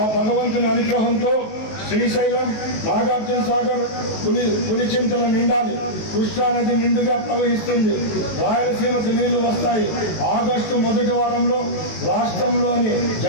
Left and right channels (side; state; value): right; late; 19 ms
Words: భగవంతుని అనుగ్రహంతో శ్రీశైలం, నాగార్జున సాగర్, పులిచింతల నిండాలి. కృష్ణానది నిండుగా ప్రవహిస్తుంది. రాయలసీమకు నీళ్లు వస్తాయి. ఆగస్టు మొదటి వారంలో రాష్ట్రంలోని